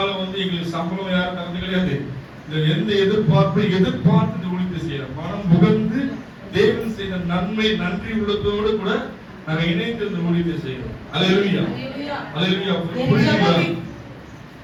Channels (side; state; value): both; identical; correlation 1.00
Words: எங்களுக்கு சம்பளம் யாரும் தரது கிடையாது. எந்த எதிர்பார்ப்பை எதிர்பார்த்து இந்த ஊழியத்தை செய்யறோம். மனம் புகழ்ந்து தேவன் செய்த நன்மை நன்றி உள்ளத்தோடு கூட நாங்க இணைந்து இந்த ஊழியத்தை செய்யறோம். அல்லேலூயா அல்லேலூயா.